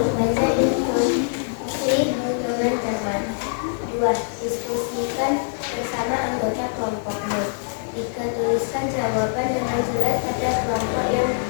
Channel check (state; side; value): silent; right; digital silence